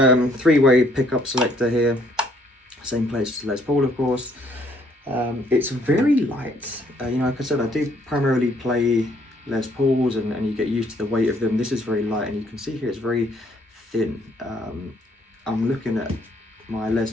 pickup selector here, same place as Les Paul, of course. It's very light. Like I said, I do primarily play Les Pauls, and you get used to the weight of them. This is very light, and you can see here it's very thin. I'm looking at my Les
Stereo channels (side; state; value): both; normal; correlation 0.66